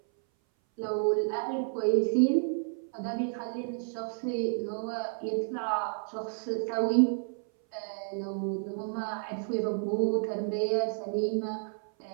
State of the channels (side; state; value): left; silent; 57 dB below the other